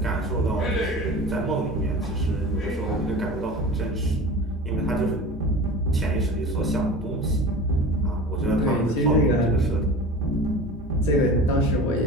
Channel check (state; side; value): normal; both; correlation 0.36